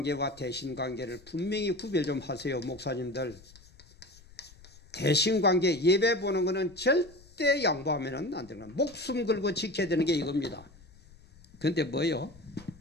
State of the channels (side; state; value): left; noise; rumble, 23 dB below the sound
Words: 대신관계를 분명히 구별 좀 하세요, 목사님들. 대신관계 예배 보는 거는 절대 양보하면 안 되는 거예요. 목숨 걸고 지켜야 되는 게 이겁니다. 그런데 뭐요?